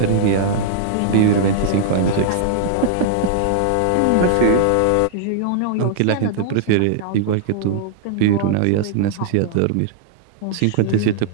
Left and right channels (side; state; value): both; different; correlation -0.01